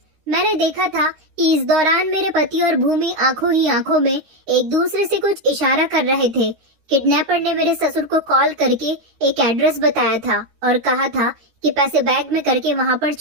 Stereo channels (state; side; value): late; left; 13 ms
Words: मैंने देखा था कि इस दौरान मेरे पति और भूमि आंखों ही आंखों में एक दूसरे से कुछ इशारा कर रहे थे। किडनैपर ने मेरे ससुर को कॉल करके एक एड्रेस बताया था और कहा था कि पैसे बैग में करके वहां पर